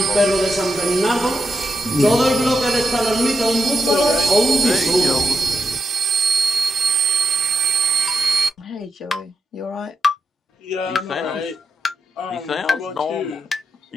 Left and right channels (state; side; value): normal; both; correlation 0.83